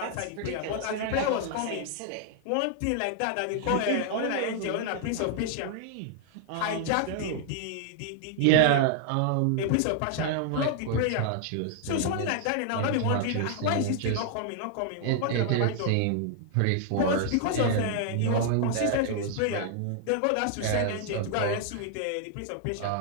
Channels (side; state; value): both; different; correlation 0.00